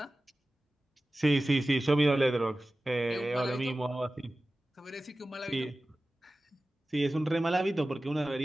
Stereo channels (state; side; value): normal; both; correlation 0.96